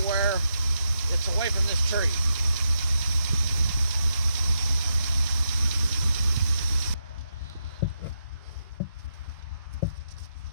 where it's away from this tree.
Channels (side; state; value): both; inverted; correlation -0.83